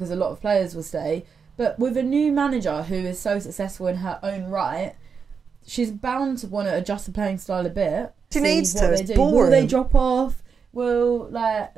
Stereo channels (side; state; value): left; quieter; 5.9 dB